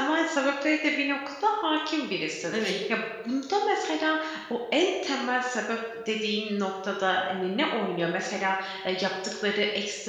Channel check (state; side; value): identical; both; correlation 1.00